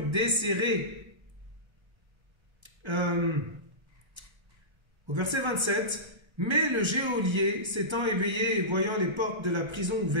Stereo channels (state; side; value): late; left; 1.3 ms